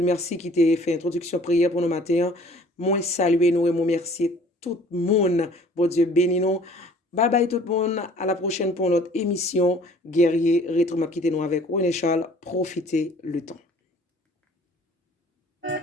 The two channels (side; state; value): both; normal; correlation 0.52